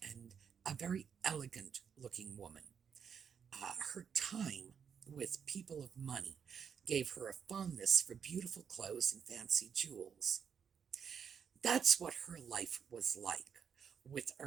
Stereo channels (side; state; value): left; quieter; 7.2 dB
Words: and a very elegant looking woman. Her time with people of money gave her a fondness for beautiful clothes and fancy jewels. That's what her life was like with